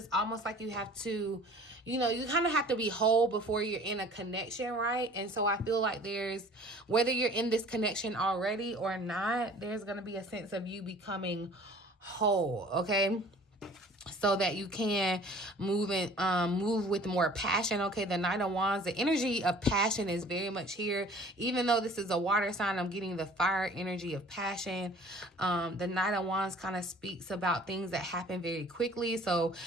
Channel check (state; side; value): normal; both; correlation 0.49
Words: almost like you have to, you know, you kind of have to be whole before you're in a connection, right? And so I feel like there's, whether you're in this connection already or not, there's going to be a sense of you becoming whole, okay? So that you can move with more passion. Okay, the Knight of Wands, the energy of passion is very much here. Even though this is a water sign, I'm getting the fire energy of passion. The Knight of Wands kind of speaks about things that happen very quickly. So